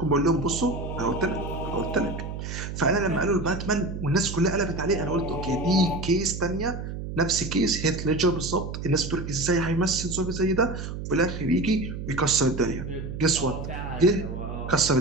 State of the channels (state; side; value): noise; right; hum, 7 dB below the sound